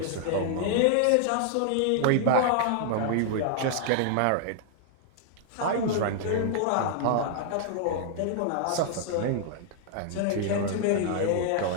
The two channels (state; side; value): different; both; correlation -0.01